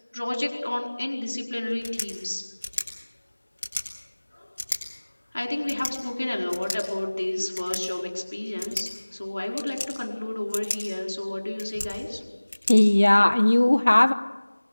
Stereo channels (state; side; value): inverted; both; correlation -1.00